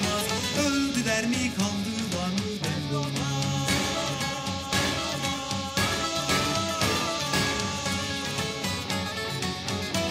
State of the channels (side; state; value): both; identical; correlation 1.00